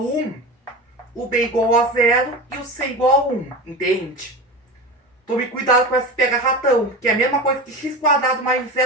o b igual a 0 e o c igual a 1. Entende? Tome cuidado com esse pega-ratão, que é a mesma coisa que x quadrado mais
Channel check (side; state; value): both; normal; correlation 0.28